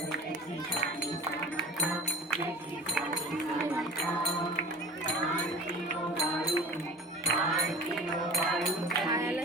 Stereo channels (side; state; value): both; normal; correlation 0.40